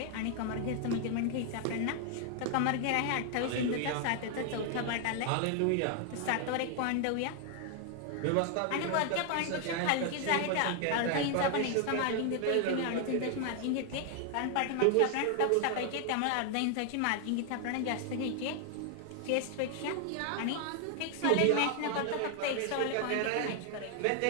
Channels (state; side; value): different; both; correlation 0.00